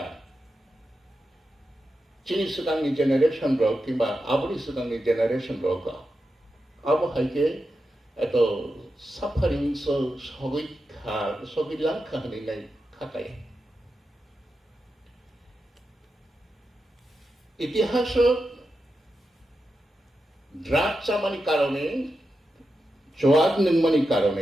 chini sudangni generation rok kimba aburi sudangni generation rok abo haike eto suffering so sogilang khani nai khakai ইতিহাস ড্রাগ চামানি কারণে জোয়াগ নংমানি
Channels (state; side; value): normal; both; correlation 0.89